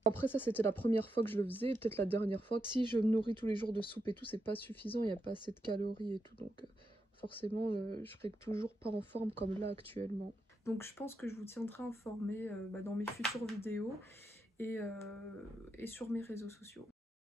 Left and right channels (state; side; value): normal; both; correlation 0.84